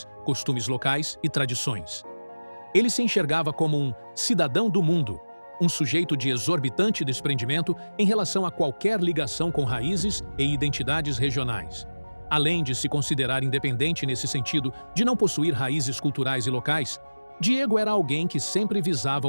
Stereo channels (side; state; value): both; inverted; correlation -1.00